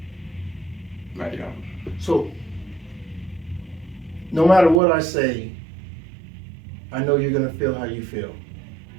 Yeah. So, no matter what I say, I know you're gonna feel how you feel.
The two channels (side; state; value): left; drops out; at 4.8 s